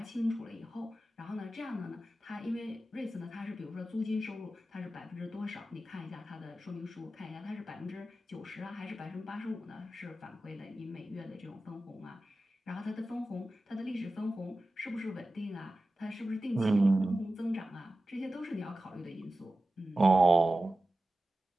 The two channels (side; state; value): both; normal; correlation 0.94